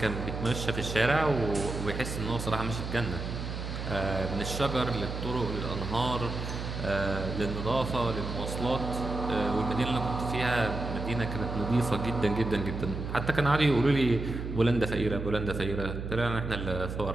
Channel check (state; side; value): noise; right; hum, 6 dB below the sound